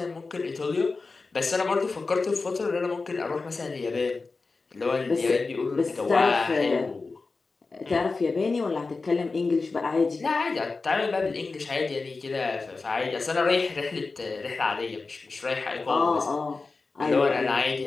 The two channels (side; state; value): right; quieter; 4.0 dB